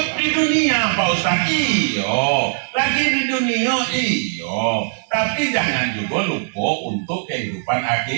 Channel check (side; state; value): left; silent; 66 dB below the other